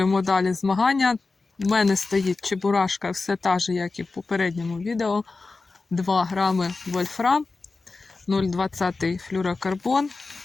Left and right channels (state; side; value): quieter; right; 3.9 dB